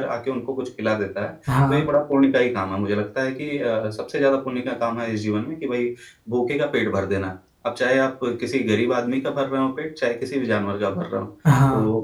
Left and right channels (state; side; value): identical; both; correlation 1.00